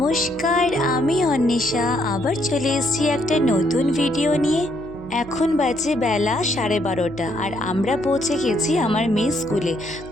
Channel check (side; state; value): right; noise; hum, 18 dB below the sound